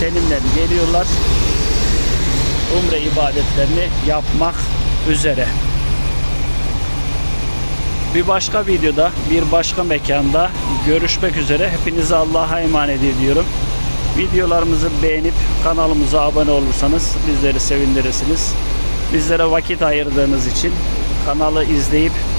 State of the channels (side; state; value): both; inverted; correlation -1.00